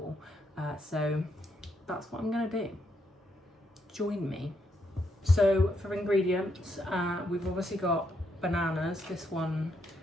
So that's what I'm going to do. Join me. So for ingredients, we've obviously got bananas. This one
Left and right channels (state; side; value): normal; both; correlation 0.77